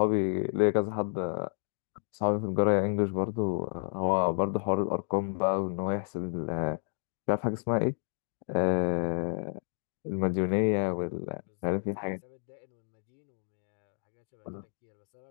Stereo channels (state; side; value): silent; right; digital silence